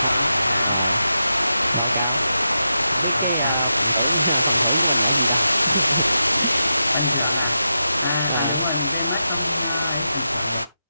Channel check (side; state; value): both; inverted; correlation -0.88